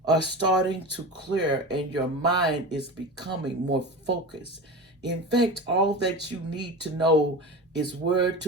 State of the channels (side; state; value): both; normal; correlation 0.28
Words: are starting to clear, and your mind is becoming more focused. In fact, all that you need to know is where